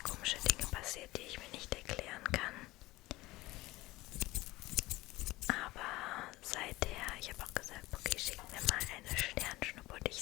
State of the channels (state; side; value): quieter; right; 19.2 dB